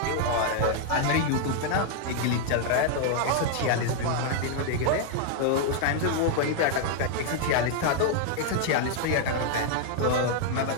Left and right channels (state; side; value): different; both; correlation 0.00